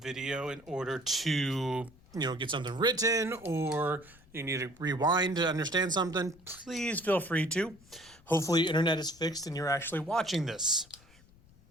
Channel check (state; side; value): noise; left; rumble, 26 dB below the sound